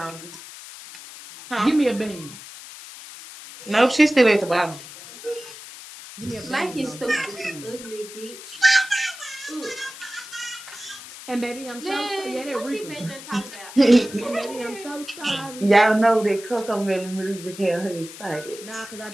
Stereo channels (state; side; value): noise; left; hiss, 15 dB below the sound